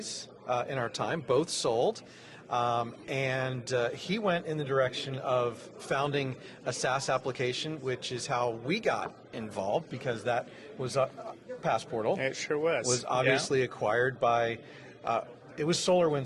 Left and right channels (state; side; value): identical; both; correlation 1.00